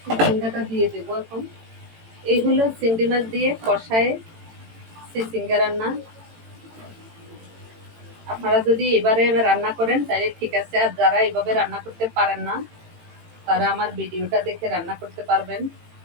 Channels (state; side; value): late; left; 18 ms